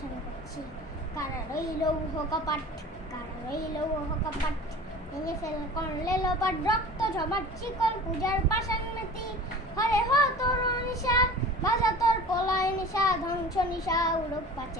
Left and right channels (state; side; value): normal; both; correlation 0.39